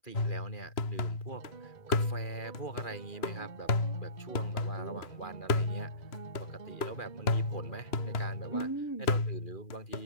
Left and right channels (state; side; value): late; right; 2.9 ms